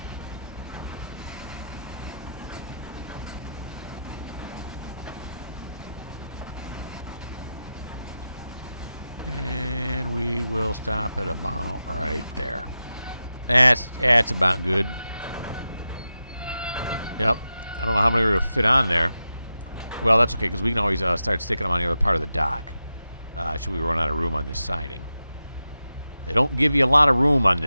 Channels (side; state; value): both; inverted; correlation -0.90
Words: And we will stop at about right there. That's about good. Yep. I don't know how many we're going to fit on there. Well, that's okay, because we can always start sticking them on the other part of the dock. Should we run out of room on this siding? They don't give you a lot of room on